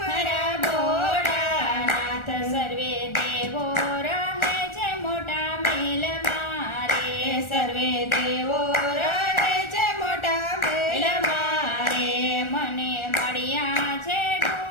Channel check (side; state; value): right; late; 1.4 ms